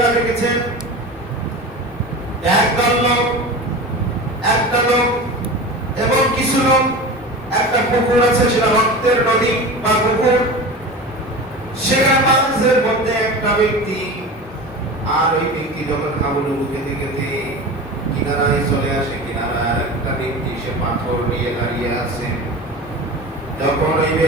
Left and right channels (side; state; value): both; normal; correlation 0.31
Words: দেখেছেন একটা লোক এবং কিছু লোক, একটা পুকুর আছে, সেটা রক্তের নদী বা পুকুর, সেখানে মাঝের মধ্যে একটা ব্যক্তি, আর ওই ব্যক্তি যখন হাবুডুবু খেতে খেতে কিনারায় চলে আসে, কিনারায় একটা ব্যক্তি সে পাথর নিয়ে দাঁড়িয়ে আছে। যখন ওই